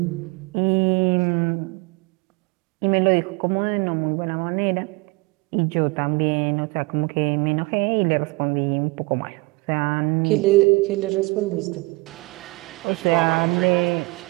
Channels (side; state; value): left; quieter; 25.5 dB